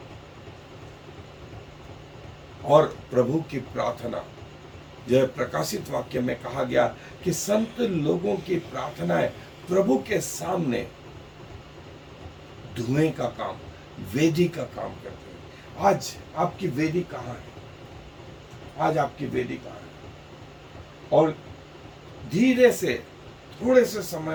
और प्रभु की प्रार्थना जो है, प्रकाशित वाक्य में कहा गया कि संत लोगों की प्रार्थनाएं प्रभु के सामने धुएं का काम, वेदी का काम करते हैं। आज आपकी वेदी कहाँ है? आज आपकी वेदी कहाँ है? और धीरे से, थोड़े से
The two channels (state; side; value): identical; both; correlation 1.00